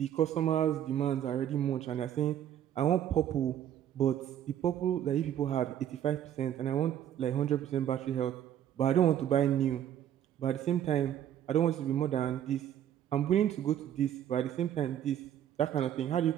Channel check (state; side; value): quieter; left; 10.6 dB